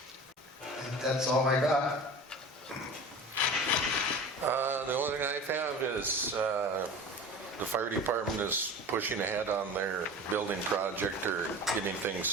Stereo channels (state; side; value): normal; both; correlation 0.36